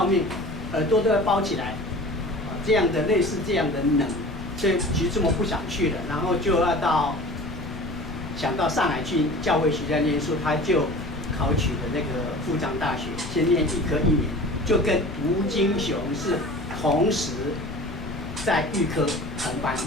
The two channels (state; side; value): noise; left; rumble, 10 dB below the sound